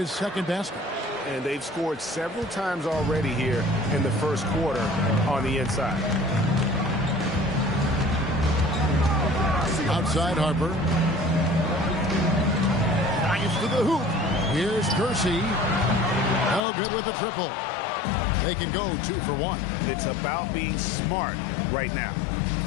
second basket. And they've scored several times already here in the first quarter on the inside. Outside Harper. Drives to the hoop. Here's Kersey. No good with the triple. They can go 2 for 1. It's about being smart right now.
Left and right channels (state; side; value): drops out; right; at 16.6 s